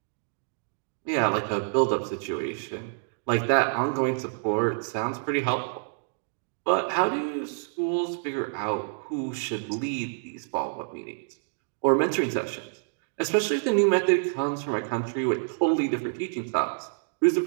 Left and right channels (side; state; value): left; silent; digital silence